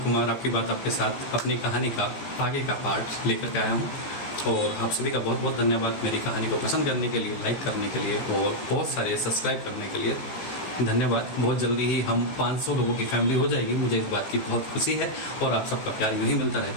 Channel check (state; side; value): late; right; 15 ms